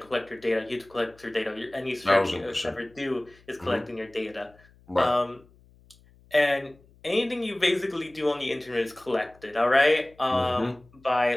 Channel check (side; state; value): left; noise; hum, 28 dB below the sound